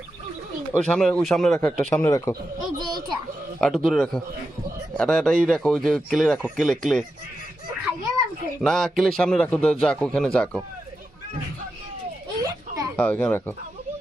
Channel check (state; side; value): normal; both; correlation 0.89